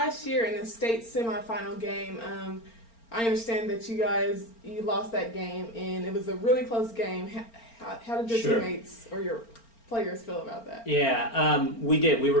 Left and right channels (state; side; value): late; right; 4.4 ms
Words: year in the state semifinal game, I understand that you lost that game, and it was a really close game. How did your teammates or your players feel about that? Yeah, we did. We